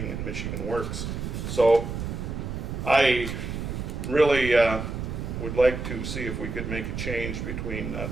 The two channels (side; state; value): right; noise; rumble, 5 dB below the sound